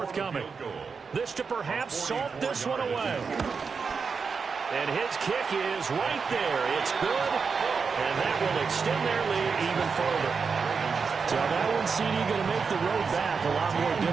This to perhaps salt this one away. And his kick is right there. It's good. And that will extend their lead even further. So that one, CD, going to make the road back a lot more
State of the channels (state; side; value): quieter; left; 5.4 dB